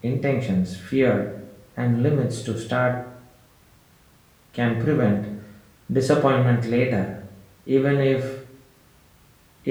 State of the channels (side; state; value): both; identical; correlation 1.00